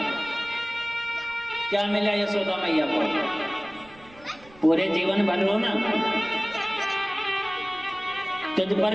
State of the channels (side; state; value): right; noise; rumble, 24 dB below the sound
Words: क्या मिला यशोदा मैया को? पूरे जीवन भर रोना। तुझ